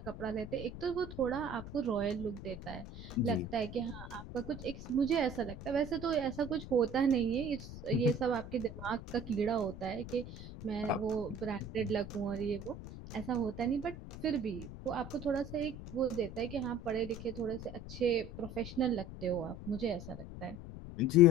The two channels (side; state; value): left; noise; rumble, 11 dB below the sound